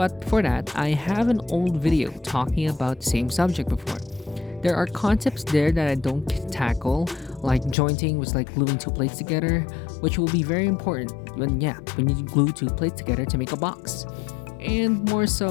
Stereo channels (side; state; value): right; drops out; at 7.8 s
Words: for that, I have an old video talking about the same subject before. There are concepts there that I don't tackle, like jointing, which is like gluing two plates together, which will be very important when you glue two plates together to make a box. And more